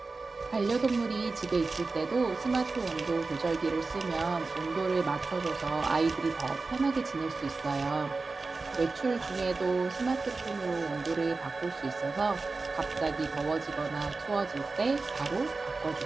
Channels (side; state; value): left; quieter; 3.8 dB